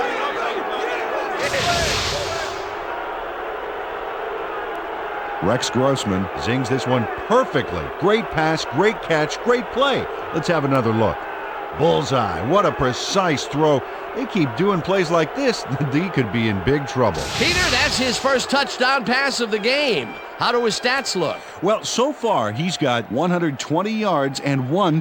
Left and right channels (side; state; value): both; identical; correlation 1.00